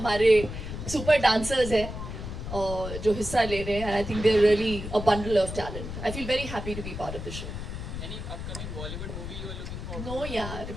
सुपर डांसर्स हैं जो हिस्सा ले रहे हैं. I think they are really a bundle of talent. I feel very happy to be part of the show. Any upcoming Bollywood movie you are looking for? No यार,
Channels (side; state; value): left; noise; rumble, 7 dB below the sound